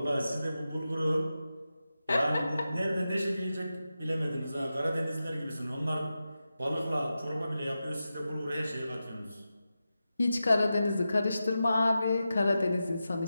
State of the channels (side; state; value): both; inverted; correlation -0.91